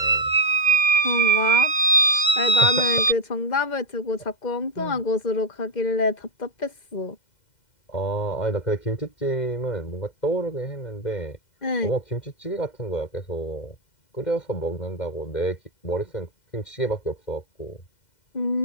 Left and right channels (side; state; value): right; late; 2.1 ms